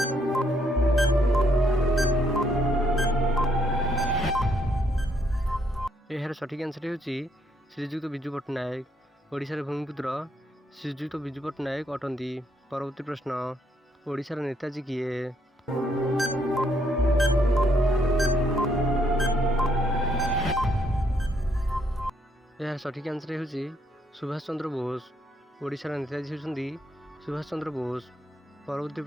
एहार सठिक आंसर हेउची श्रीजुक्त बिजू पट्टनायक। ओडिशार भूमिपुत्र श्रीजुक्त बिजू पट्टनायक अटंती। परवर्ती प्रश्न, ओडिशार नेताजी किए? यार सठिक आंसर हेउची सुभाष चंद्र बोस। ओडिशार नेताजी हेउचंती सुभाष चंद्र बोस। परवर्ती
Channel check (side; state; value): both; normal; correlation 0.72